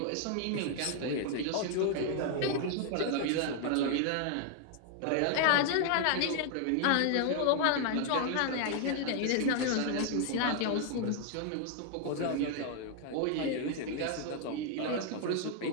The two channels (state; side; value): different; both; correlation 0.00